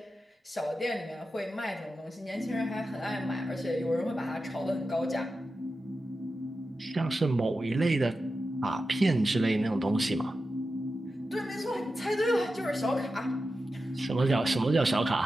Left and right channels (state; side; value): normal; both; correlation 0.91